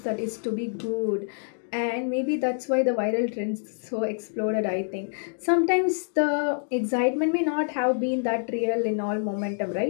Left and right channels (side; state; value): right; silent; 61 dB below the other